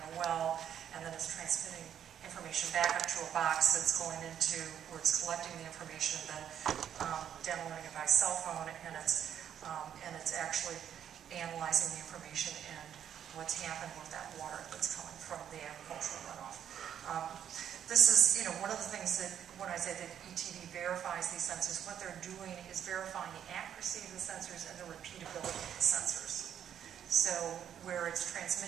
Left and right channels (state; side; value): quieter; left; 9.4 dB